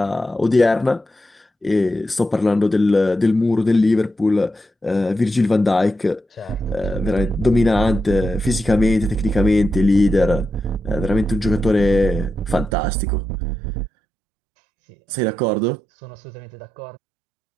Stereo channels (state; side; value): drops out; left; at 12.8 s